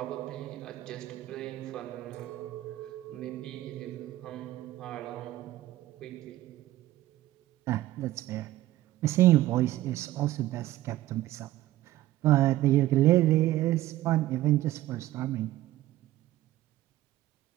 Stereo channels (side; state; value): left; quieter; 15.3 dB